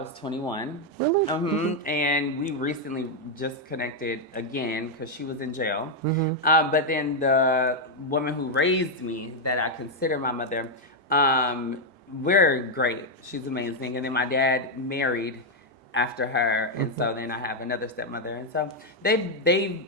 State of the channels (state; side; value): normal; both; correlation 0.01